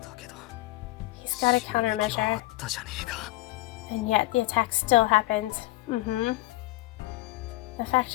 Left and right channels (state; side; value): quieter; right; 18.9 dB